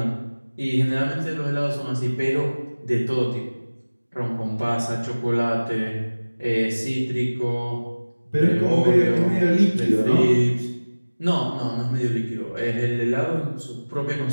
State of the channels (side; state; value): both; inverted; correlation -1.00